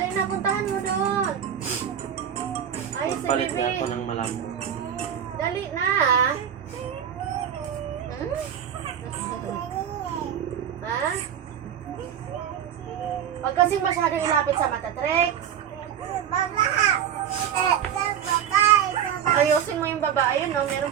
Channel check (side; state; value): left; quieter; 9.0 dB